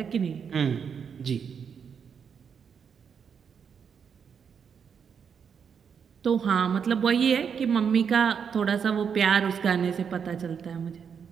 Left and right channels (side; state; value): left; quieter; 6.9 dB